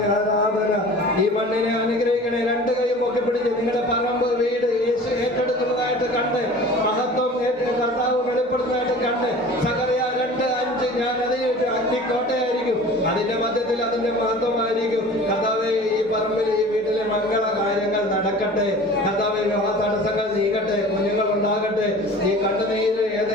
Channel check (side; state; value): both; normal; correlation 0.42